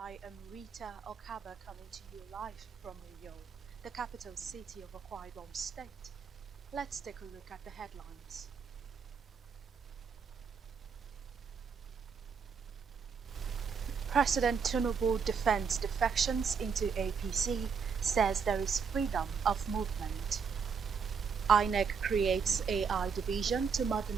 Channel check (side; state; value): left; quieter; 6.1 dB